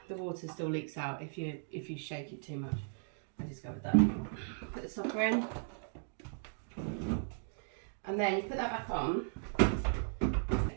water still leaks out if you shake it too much. I discovered that. Put the stopper in, and then you put that back on.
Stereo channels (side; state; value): left; silent; digital silence